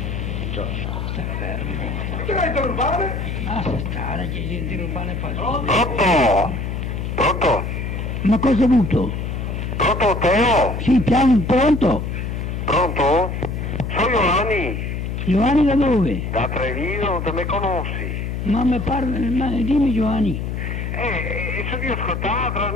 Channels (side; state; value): left; noise; hum, 4 dB below the sound